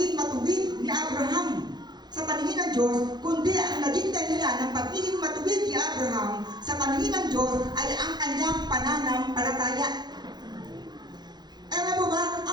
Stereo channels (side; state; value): left; late; 0.21 ms